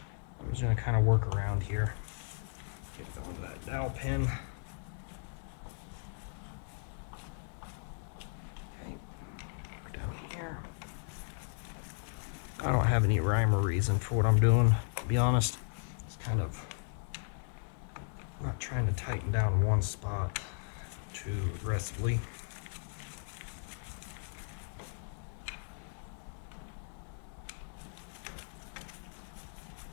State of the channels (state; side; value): silent; right; 54 dB below the other